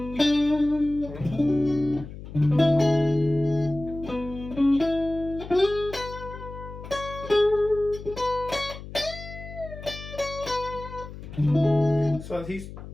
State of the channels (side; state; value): left; noise; hum, 13 dB below the sound